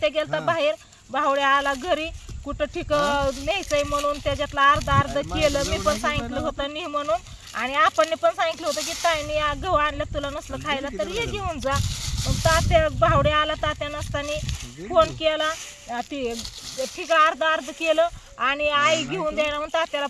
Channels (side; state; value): both; identical; correlation 1.00